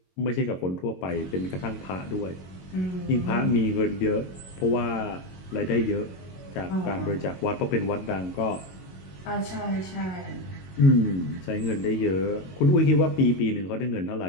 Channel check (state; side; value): late; right; 22 ms